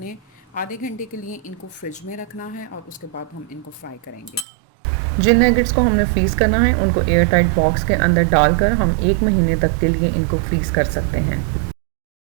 आधे घंटे के लिए इनको फ्रिज में रखना है और उसके बाद हम इनको फ्राई करेंगे। जिन नगेट्स को हमने फ्रीज़ करना है उनको एयर टाइट बॉक्स के अंदर डालकर हम 1 महीने तक के लिए इनको फ्रीज़ कर सकते हैं।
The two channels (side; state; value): left; drops out; at 4.5 s